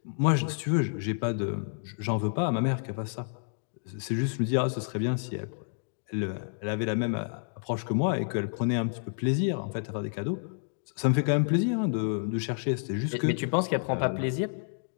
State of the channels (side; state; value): right; silent; digital silence